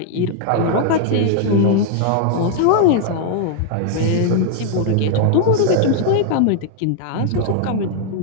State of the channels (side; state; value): both; different; correlation 0.00